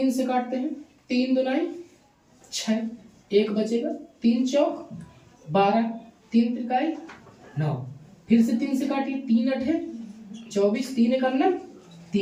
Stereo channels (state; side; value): identical; both; correlation 1.00